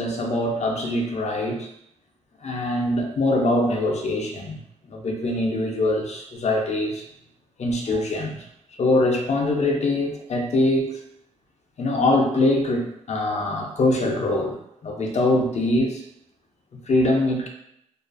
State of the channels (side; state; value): both; normal; correlation 0.62